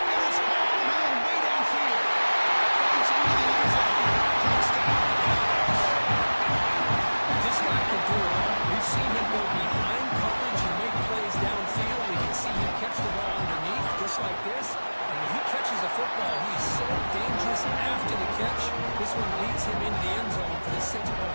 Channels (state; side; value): inverted; both; correlation -1.00